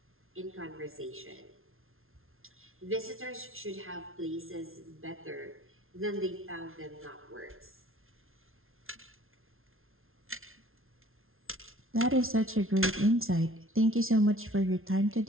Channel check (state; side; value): late; left; 0.61 ms